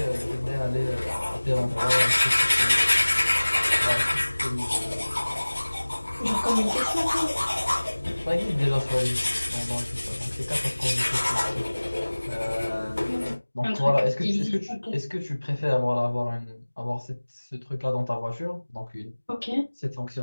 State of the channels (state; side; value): inverted; both; correlation -1.00